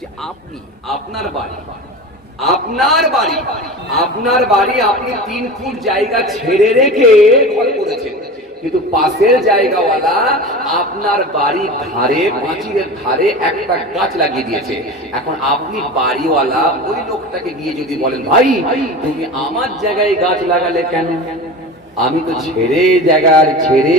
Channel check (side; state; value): both; normal; correlation 0.31